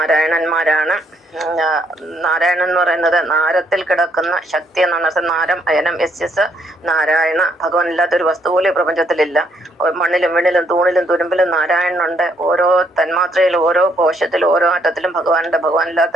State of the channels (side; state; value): both; normal; correlation 0.71